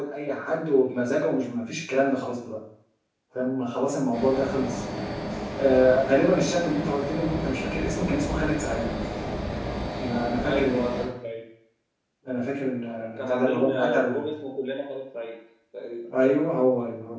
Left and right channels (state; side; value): identical; both; correlation 1.00